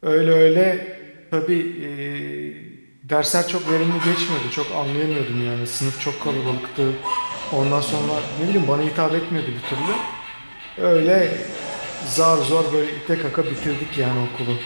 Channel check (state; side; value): inverted; both; correlation -1.00